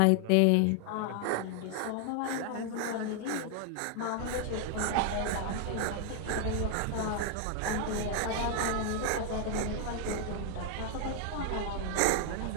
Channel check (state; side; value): different; both; correlation 0.00